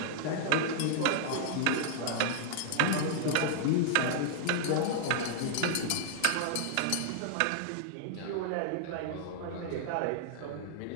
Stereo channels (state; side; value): different; both; correlation -0.01